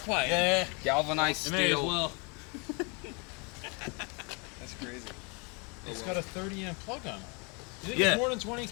quite. Yeah. Galvanized steel. Well. That's crazy. It's got a 30 amp plug on it. You think Yeah. it's more than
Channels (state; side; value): quieter; right; 32.3 dB